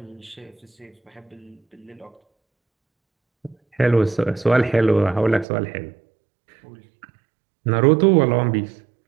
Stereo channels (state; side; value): drops out; left; at 5.5 s